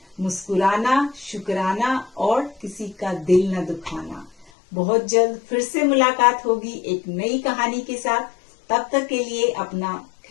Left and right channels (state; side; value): drops out; right; at 4.5 s